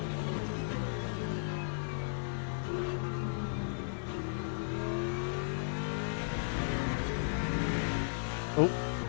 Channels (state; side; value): silent; right; 54 dB below the other